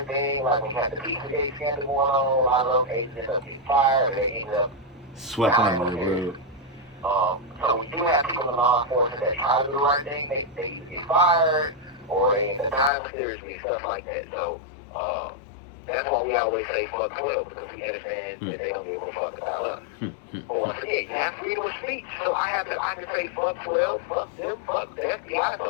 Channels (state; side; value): drops out; right; at 12.9 s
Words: thing, like when you have the Pizzagate scandal going on, a lot of those agents end up getting fired, or they end up Swept under the rug. So we do have people in law enforcement that try to do the right thing. They either get fired or they end up dying seriously and stuff like that. So that's why we always say fuck 12, because we understand that they don't give a fuck about us. But once again, you have freedom of speech. So I can say fuck 12, fuck them, fuck the FBI,